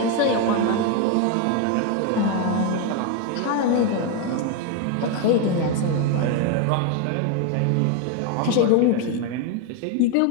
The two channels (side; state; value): both; different; correlation 0.01